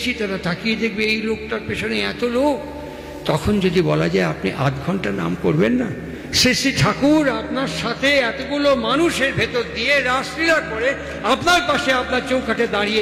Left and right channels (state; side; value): identical; both; correlation 1.00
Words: তারা তাকিয়ে দেখবে এই লোকটার পেছনে এত লোক। তখন যদি বলা যায় আপনি 8 ঘন্টা নাম করবেন না, শ্রী ঠাকুর আপনার সাথে এতগুলো মানুষের ভেতর দিয়ে রাসলীলা করে আপনার পাশে, আপনার চৌকাঠে